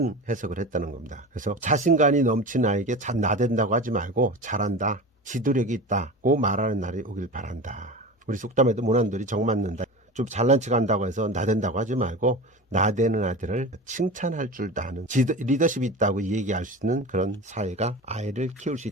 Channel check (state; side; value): normal; both; correlation 0.31